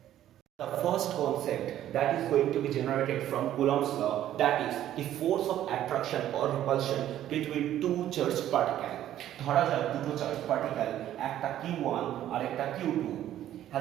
The first concept that is going to be generated from Coulomb's law, that is the force of attraction or repulsion between two charged particles. ধরা যাক দুটো charge particle, একটা q1 আর একটা q2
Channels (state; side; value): quieter; left; 12.1 dB